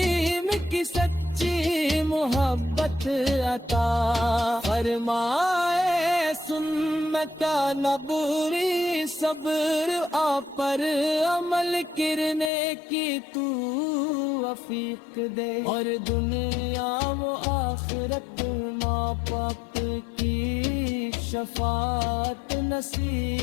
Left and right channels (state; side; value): drops out; right; at 12.5 s